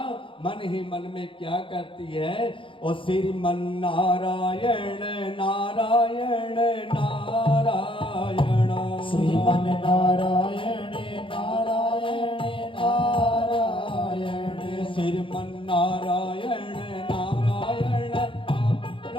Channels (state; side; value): late; right; 0.25 ms